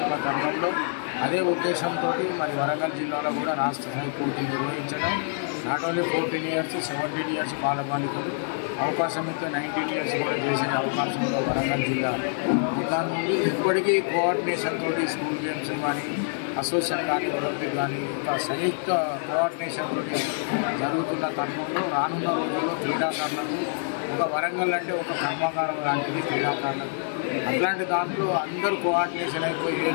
తరుణంలో అదే ఉద్దేశంతో మరి వరంగల్ జిల్లాలో కూడా రాష్ట్ర స్థాయి పోటీలు నిర్వహించడం, నాట్ ఓన్లీ 14 years 17 years బాలబాలికలు అవకాశం ఇస్తే 19 years కూడా చేసే అవకాశంలో వరంగల్ జిల్లా దాని నుండి ఎప్పటికీ కోఆర్డినేషన్ తోటి స్కూల్ గేమ్స్ కానీ అసోసియేషన్ కానీ ఒలింపిక్ కానీ ఒక సంయుక్త కోఆర్డినేషన్ తోటి జరుగుతున్న తరుణంలో రానున్న రోజుల్లో క్రీడాకారులకు ఒక వరంగల్ అంటే ఒక కర్మాగారం లాంటిది క్రీడాకారులకు. అట్లాంటి దాంట్లో అందరూ కోఆర్డినేషన్ అయిపోయి ఏ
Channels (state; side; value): silent; right; 61 dB below the other